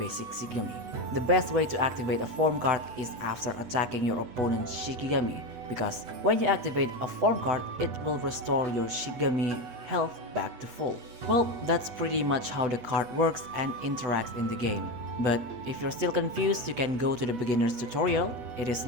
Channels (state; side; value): late; left; 8.2 ms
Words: Shigami. The best way to activate a form card is after attacking your opponent's Shikigami, because when you activate a form card, it will restore your Shigami health back to full. Well, that's pretty much how the card works and interacts in the game. But if you're still confused, you can go to the beginner's tutorial. It is